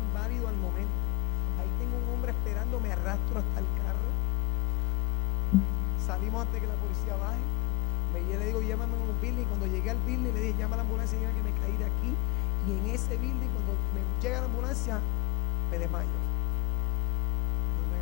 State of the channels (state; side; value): quieter; right; 28.8 dB